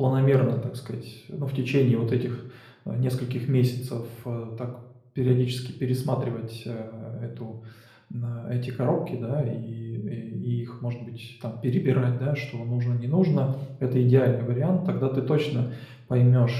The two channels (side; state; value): both; identical; correlation 1.00